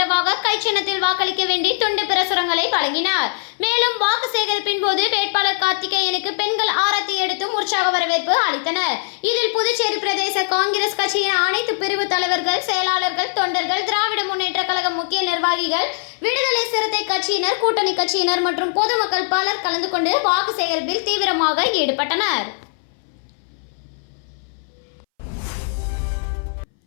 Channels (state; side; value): silent; right; 62 dB below the other